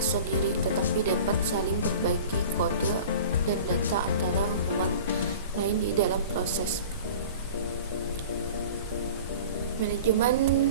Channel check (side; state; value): both; inverted; correlation -0.40